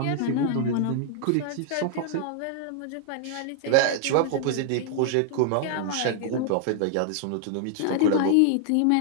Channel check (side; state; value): both; different; correlation -0.01